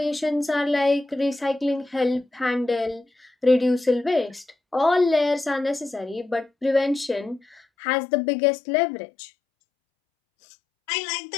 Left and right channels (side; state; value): right; drops out; at 7.6 s